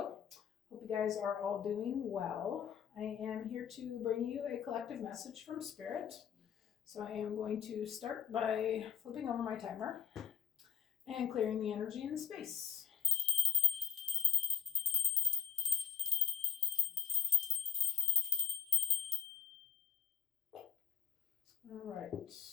Hope you guys are all doing well. I am here to bring you a collective message from Spirit. So I am going to start by flipping over my timer and clearing the energy in the space. All right.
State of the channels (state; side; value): quieter; right; 7.6 dB